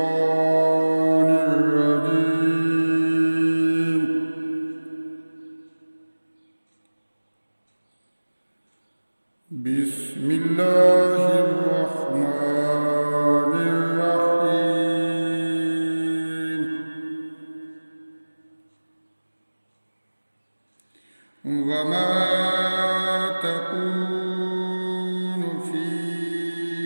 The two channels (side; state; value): both; inverted; correlation -1.00